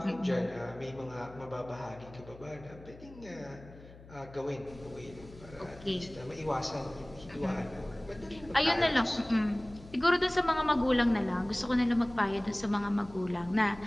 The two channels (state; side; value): noise; left; hum, 19 dB below the sound